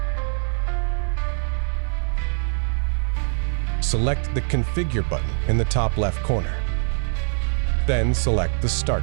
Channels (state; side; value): silent; left; 63 dB below the other